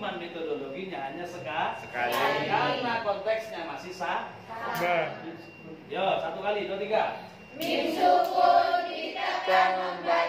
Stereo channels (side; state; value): both; identical; correlation 1.00